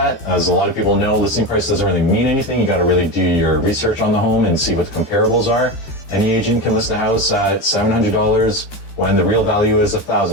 As a lot of people know, listing price doesn't really mean anything. You got to really do your research on the home and see what the comparables are. Any agent can list a house at $700 when the real value is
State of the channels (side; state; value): right; late; 13 ms